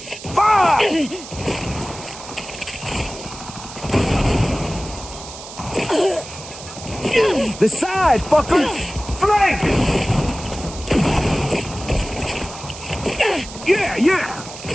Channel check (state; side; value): noise; right; hiss, 13 dB below the sound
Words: Fire! The side, fuckers! Flank! Yeah, yeah!